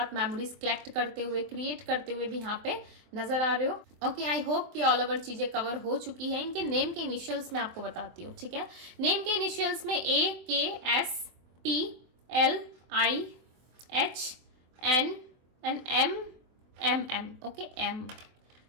मेमोरीज कलेक्ट करते हुए, क्रिएट करते हुए भी यहाँ पे नजर आ रहे हो, ओके। आई होप कि ऑल ओवर चीज़ें कवर हो चुकी है। इनके नेम के इनिशियल्स मैं आपको बताती हूँ, ठीक है। नेम के इनिशियल्स में AKSTLIHN and MM, okay,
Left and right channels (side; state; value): left; late; 24 ms